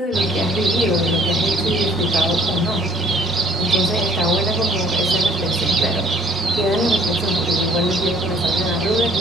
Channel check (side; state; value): both; normal; correlation 0.58